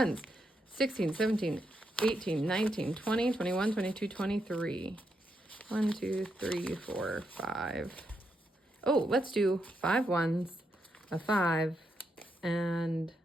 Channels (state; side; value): normal; both; correlation 0.81